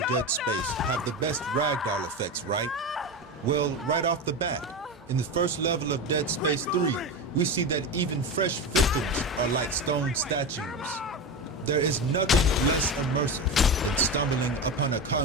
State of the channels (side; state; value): both; normal; correlation 0.21